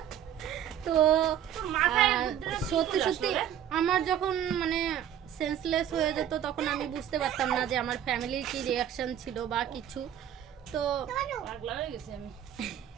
তো তোর মাথায় আর বুদ্ধিটা কি সত্যি করে সত্যি আসলো রে? আমার যখন মানে সেন্সলেস হয়ে যেত তখন আমি বুঝতে পারতাম না যে আমার ফ্যামিলির কি রিয়াকশন ছিল বা কিছু। তো পাগলা হয়ে গেছি আমি।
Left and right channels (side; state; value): left; quieter; 10.3 dB